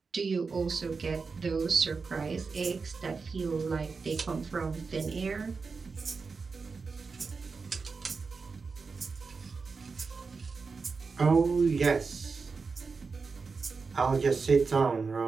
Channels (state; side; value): quieter; left; 4.7 dB